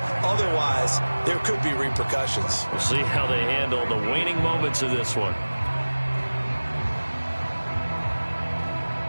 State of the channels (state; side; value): inverted; both; correlation -1.00